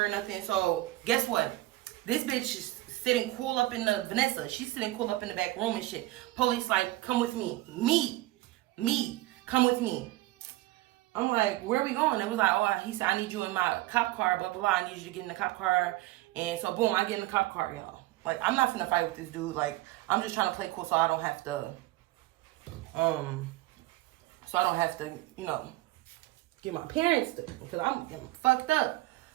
or nothing. So guess what? This bitch is sitting cool up in the Vanessa. She's sitting cool up in the back room and shit. Police like, come with me. Me. Come with me. I'm like, where are we going? It was like, oh, he said, I need you in my cop car, blah, blah, blah. I need you to get in the cop car. And so, boom, I get in the cop car, y'all. Like, I'm not finna fight with this dude. Like, I'm just trying to play cool so I don't have to, you know, get my parents to, because I'm fucked up.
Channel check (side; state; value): left; quieter; 18.4 dB